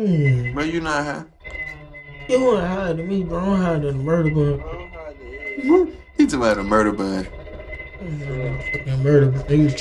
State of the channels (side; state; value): both; identical; correlation 1.00